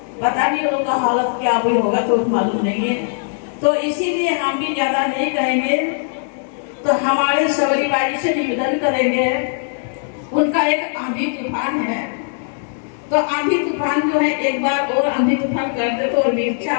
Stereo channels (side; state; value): right; silent; 66 dB below the other